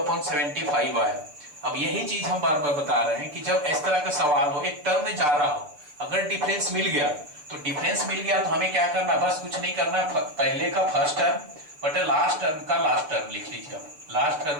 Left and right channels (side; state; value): left; late; 6.7 ms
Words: आया। अब यही चीज हम बार बार बता रहे हैं कि जब इस तरह का सवाल हो, एक टर्म में जा रहा हो, अगर डिफरेंस मिल गया तो डिफरेंस मिल गया तो हमें क्या करना है, बस कुछ नहीं करना है, पहले का फर्स्ट टर्म बटे लास्ट टर्म का लास्ट टर्म लिख लीजिए। अब लास्ट